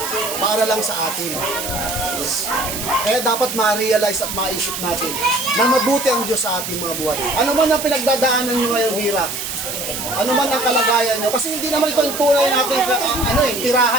Para lang sa atin. Kaya dapat ma-realize at maisip natin na mabuti ang Diyos sa ating mga buhay. Ano man ang pinagdadaanan nyo ngayong hirap, ano man ang kalagayan nyo, kasi hindi naman ito yung tunay natin,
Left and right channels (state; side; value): noise; right; hiss, 6 dB below the sound